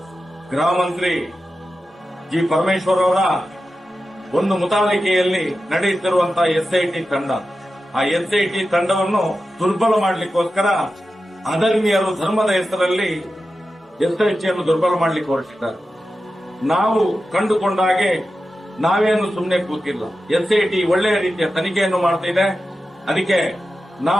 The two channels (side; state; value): both; normal; correlation 0.92